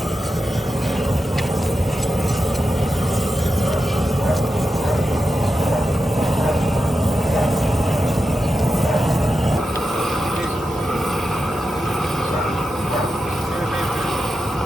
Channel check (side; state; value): both; normal; correlation 0.89